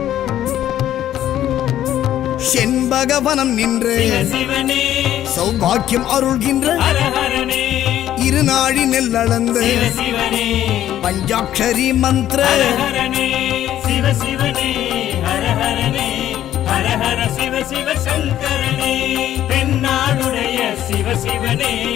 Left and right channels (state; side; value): quieter; right; 12.0 dB